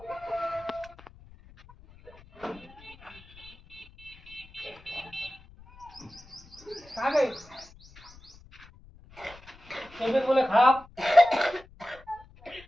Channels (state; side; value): noise; left; rumble, 23 dB below the sound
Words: तबियत बोले खराब